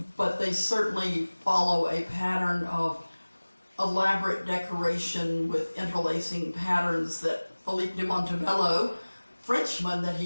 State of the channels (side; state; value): both; inverted; correlation -1.00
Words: but they certainly follow a pattern of elaborate decoration with interlacing patterns that Philippe de Montebello, Frenchman that